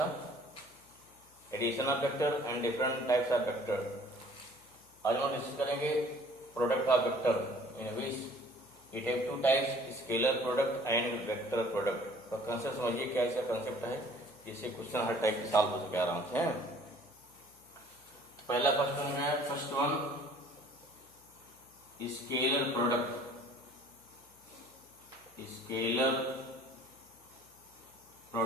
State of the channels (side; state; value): left; noise; hum, 29 dB below the sound